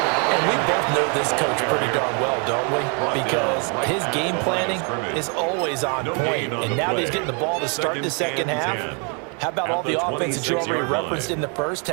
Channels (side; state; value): left; quieter; 36.9 dB